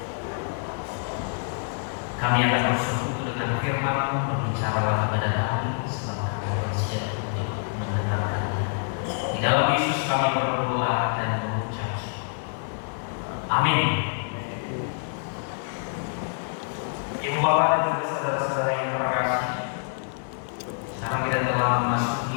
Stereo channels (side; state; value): right; silent; 61 dB below the other